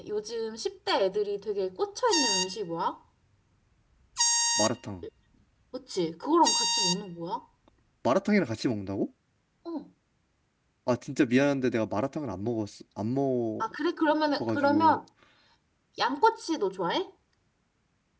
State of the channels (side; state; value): both; identical; correlation 1.00